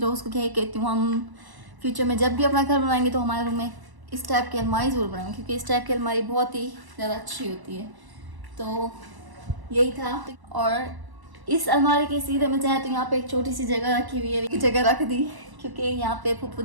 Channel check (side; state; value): left; late; 1.0 ms